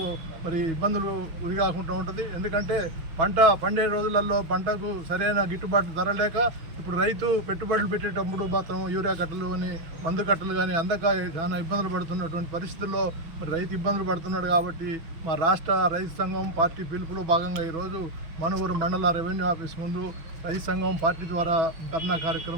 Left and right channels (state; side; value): late; left; 6.2 ms